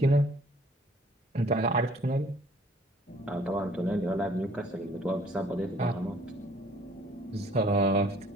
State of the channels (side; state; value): both; normal; correlation 0.58